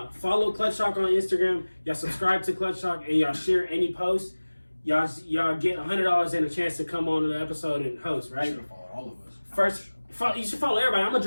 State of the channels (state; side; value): inverted; both; correlation -1.00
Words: follow Clutch Talk on Instagram. Y'all subscribe to Clutch Talk and y'all share any post. Y'all get $100 and a chance to come on the episode and host, You right? should have followed all of us. First, you should follow everybody. I'm